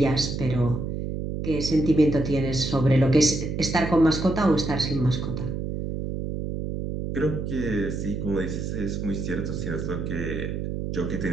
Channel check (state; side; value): noise; right; hum, 4 dB below the sound